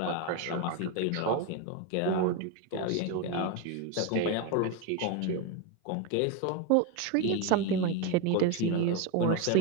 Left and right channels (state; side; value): different; both; correlation 0.02